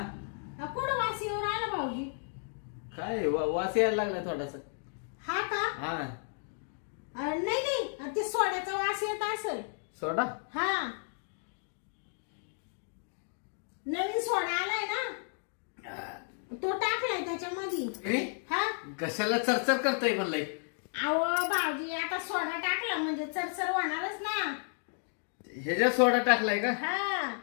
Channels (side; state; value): right; silent; 56 dB below the other